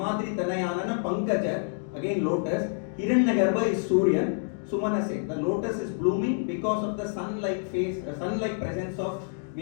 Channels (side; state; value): right; silent; digital silence